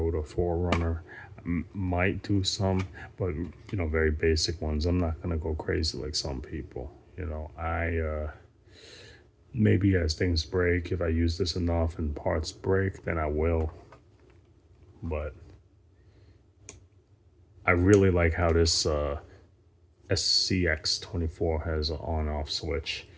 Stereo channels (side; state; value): both; identical; correlation 1.00